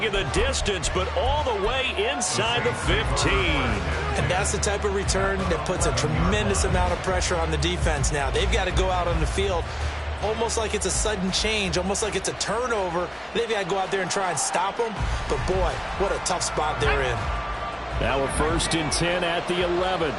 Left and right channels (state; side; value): identical; both; correlation 1.00